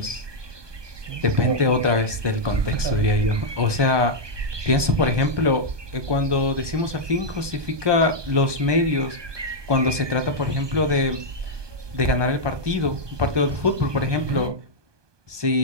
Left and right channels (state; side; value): late; left; 1.2 ms